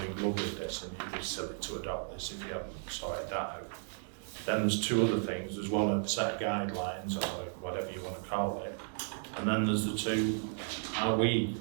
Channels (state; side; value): silent; left; 55 dB below the other